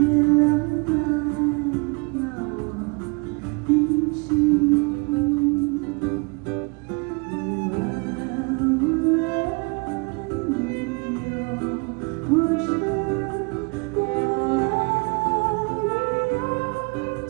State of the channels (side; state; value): left; quieter; 31.5 dB